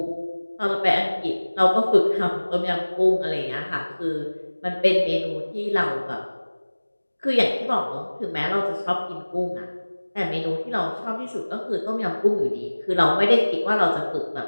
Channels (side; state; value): both; inverted; correlation -1.00